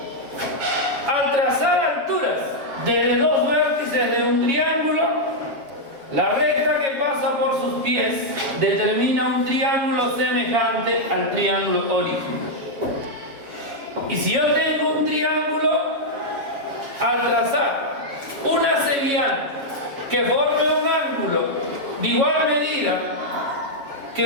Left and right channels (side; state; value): left; late; 7.2 ms